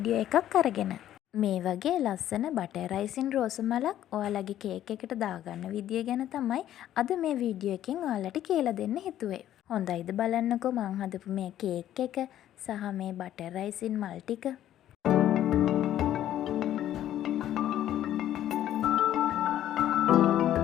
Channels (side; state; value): right; quieter; 12.0 dB